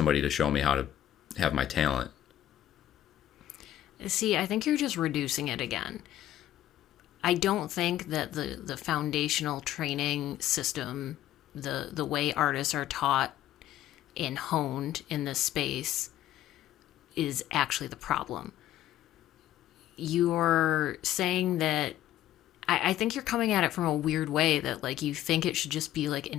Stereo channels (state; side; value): quieter; right; 12.8 dB